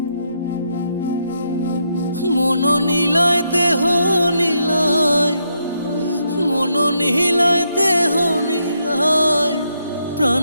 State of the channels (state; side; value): inverted; both; correlation -0.79